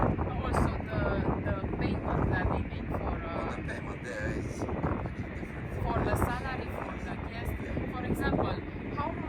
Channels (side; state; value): both; identical; correlation 1.00